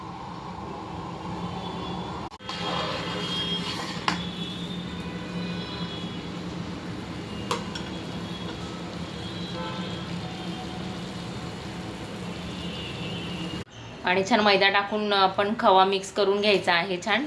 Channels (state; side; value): identical; both; correlation 1.00